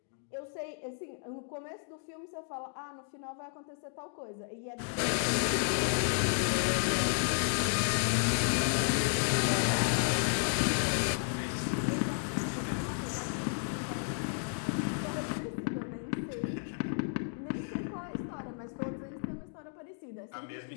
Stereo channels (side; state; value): right; silent; 56 dB below the other